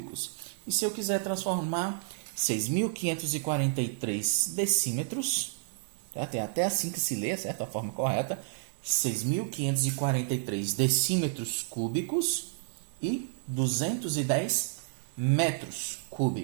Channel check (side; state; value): left; silent; digital silence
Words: E se eu quiser transformar 6.543 decímetros, certo? É até assim que se lê, certo? A forma correta, 6.543 decímetros cúbicos e 210 metros